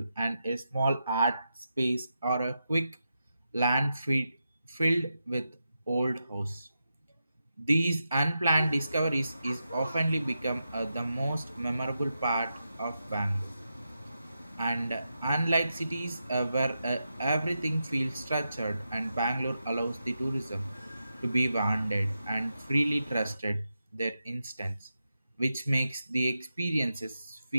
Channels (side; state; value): both; inverted; correlation -0.88